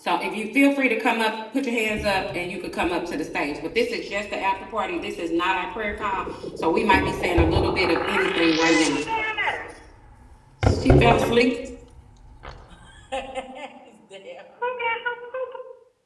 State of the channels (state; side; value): identical; both; correlation 1.00